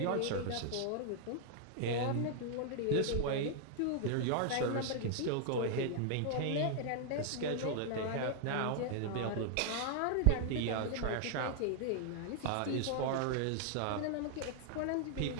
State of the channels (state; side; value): different; both; correlation 0.00